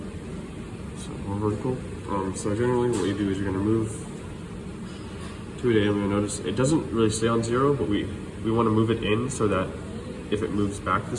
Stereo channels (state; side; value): identical; both; correlation 1.00